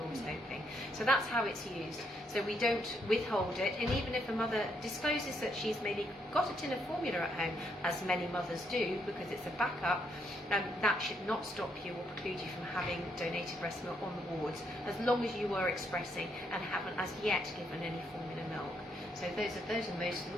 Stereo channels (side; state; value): both; normal; correlation 0.75